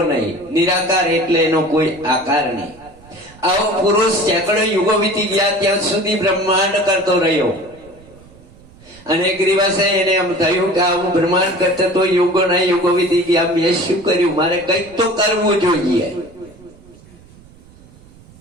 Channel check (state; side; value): noise; right; rumble, 24 dB below the sound